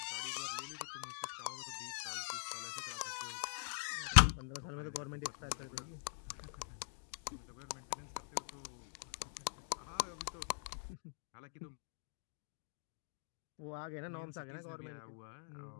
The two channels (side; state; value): right; silent; digital silence